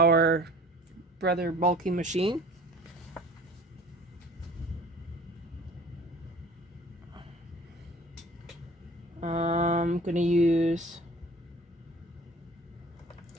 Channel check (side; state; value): both; normal; correlation 0.46